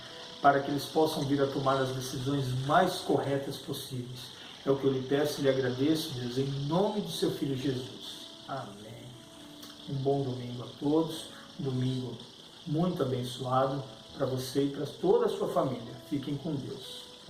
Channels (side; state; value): both; identical; correlation 1.00